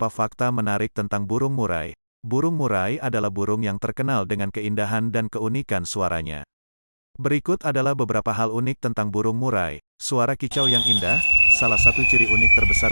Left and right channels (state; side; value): inverted; both; correlation -1.00